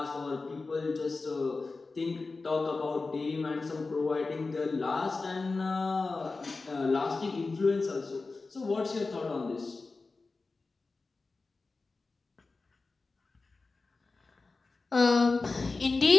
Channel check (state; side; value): quieter; right; 3.8 dB